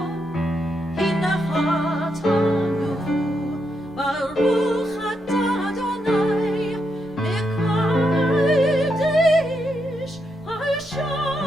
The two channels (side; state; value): left; noise; hum, 29 dB below the sound